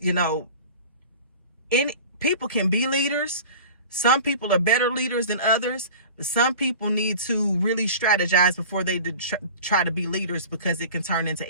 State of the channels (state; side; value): inverted; both; correlation -0.39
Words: people can be leaders. Some people are better leaders than others. Some people need to really strategize before they try to be leaders, because it can turn into